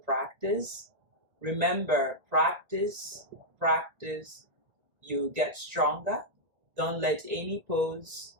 Remember, practice, you get stronger. Don't let any pose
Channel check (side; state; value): left; late; 1.6 ms